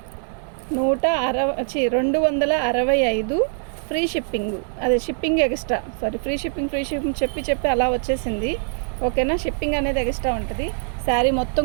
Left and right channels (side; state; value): left; silent; digital silence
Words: ఫ్రీ షిప్పింగ్. అదే షిప్పింగ్ ఎక్స్ట్రా, ఫ్రీ షిప్పింగ్ చెప్పి అలా వచ్చేసింది. ఓకేనా, షిప్పింగ్ అనేది ఎక్స్ట్రా ఉంటుంది. శారీ మొత్తం